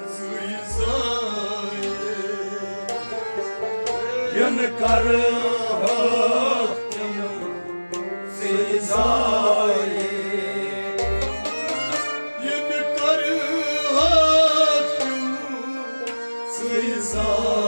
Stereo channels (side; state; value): both; inverted; correlation -1.00